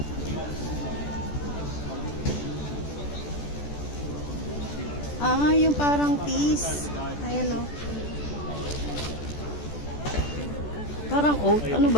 Ah, yung parang peas. Ayan o. Parang oat. Ano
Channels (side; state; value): right; late; 14 ms